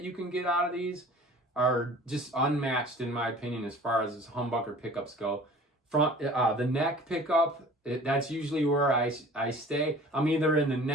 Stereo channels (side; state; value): both; normal; correlation 0.46